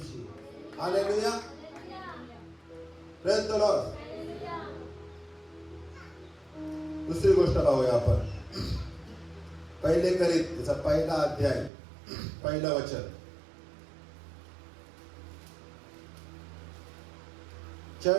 हालेलुया. Praise the Lord. दुसरी गोष्ट पाहूया आपण. पहिले करीत त्याचा पहिला अध्याय पहिलं वचन.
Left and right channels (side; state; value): left; drops out; at 11.7 s